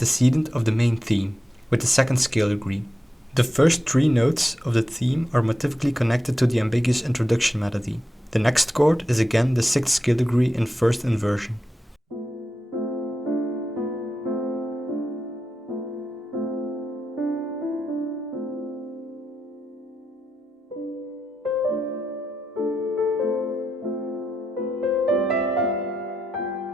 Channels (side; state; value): both; normal; correlation 0.88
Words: of the main theme, with the second scale degree. The first three notes of the theme are motivically connected to the ambiguous introduction melody. The next chord is again the sixth scale degree in first inversion.